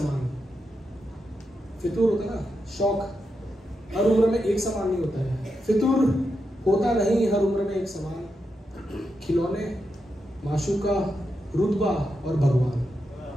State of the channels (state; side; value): normal; both; correlation 0.86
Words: फितूर होता है ना, शौक हर उम्र में एक समान नहीं होता है। फितूर होता नहीं हर उम्र में एक समान। खिलौने, माशूका, रुतबा और भगवान,